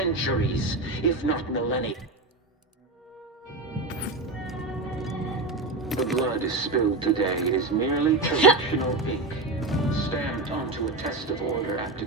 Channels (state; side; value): quieter; left; 3.1 dB